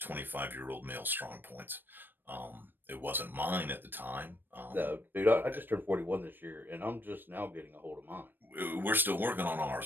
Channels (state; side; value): late; left; 0.094 ms